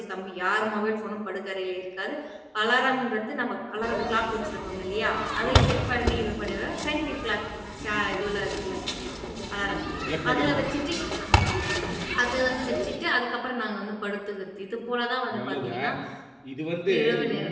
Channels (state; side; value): identical; both; correlation 1.00